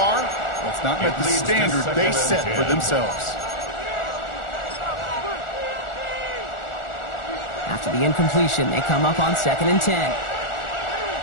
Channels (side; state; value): right; late; 1.4 ms